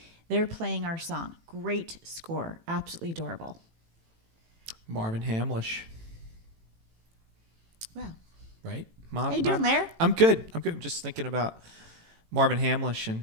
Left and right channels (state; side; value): late; left; 18 ms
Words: They're playing our song. Great score. Absolutely adorable. Marvin Hamlish, Well, right? how you doing, Larry? I'm good. I'm just thinking about Marvin Hamlish and